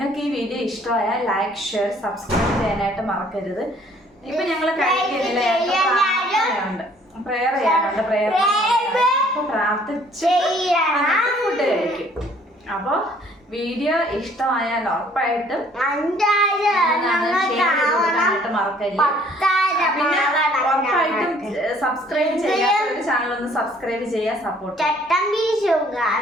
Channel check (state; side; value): normal; both; correlation 0.59